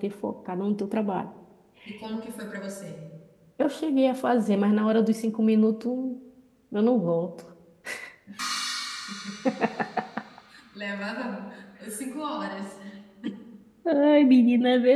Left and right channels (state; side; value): identical; both; correlation 1.00